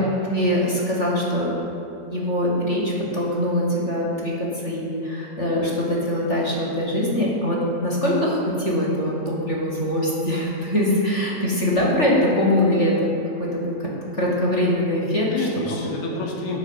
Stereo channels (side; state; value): right; late; 3.4 ms